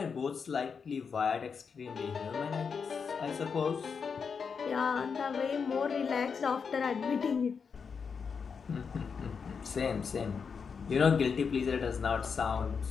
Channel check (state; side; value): quieter; right; 5.9 dB